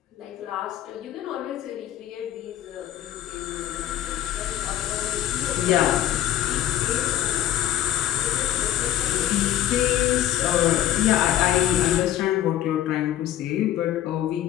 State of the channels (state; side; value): quieter; right; 12.3 dB